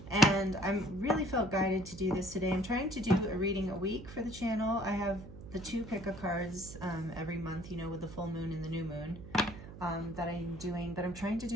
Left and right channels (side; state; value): right; noise; hum, 14 dB below the sound